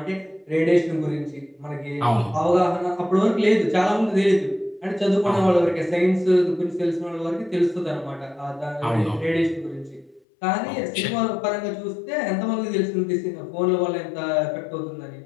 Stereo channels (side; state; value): right; drops out; at 10.2 s